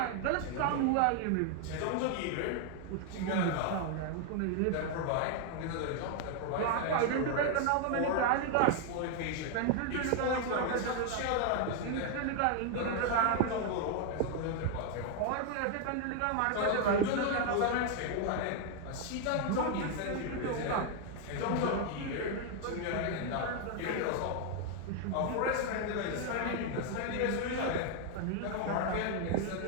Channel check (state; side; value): different; both; correlation 0.00